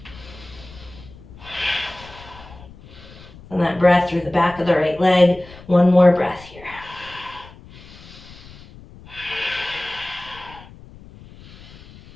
And that breath through the back of the right leg. One more breath here.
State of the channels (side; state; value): left; noise; rumble, 20 dB below the sound